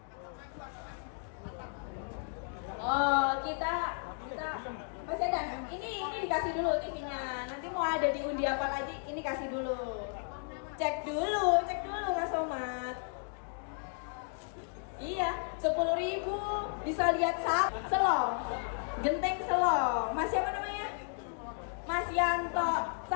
Oh, kita masih ada. Ini dikasih dulu TV-nya. Nanti mau ada di undi apa lagi? Ini kasih dulu. Cek dulu Mas Somad. Iya, 10.000 bisa lihat selong. Genteng selong. Mas siapa namanya? Mas Yanto.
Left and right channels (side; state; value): right; silent; 55 dB below the other